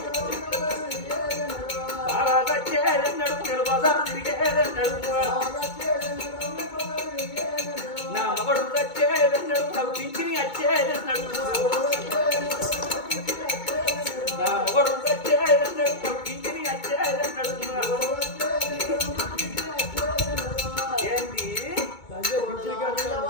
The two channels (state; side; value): late; right; 2.2 ms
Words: వచ్చేది అన్నాడు, నేను బజారు తిరిగేది అన్నాడు, నా మగడు వచ్చేది అన్నాడు, నాకు పింఛని వచ్చేది అన్నాడు, నా మగడు వచ్చేది అన్నాడు, నాకు పింఛని వచ్చేది అన్నాడు. ఏంటి